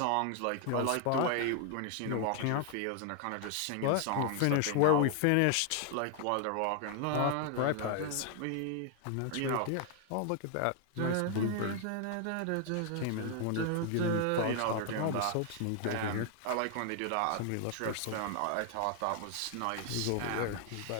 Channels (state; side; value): different; both; correlation 0.00